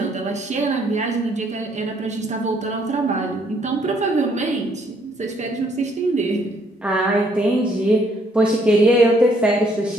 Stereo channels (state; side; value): normal; both; correlation 0.67